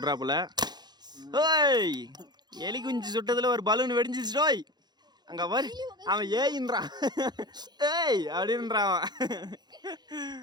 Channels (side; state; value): left; late; 0.20 ms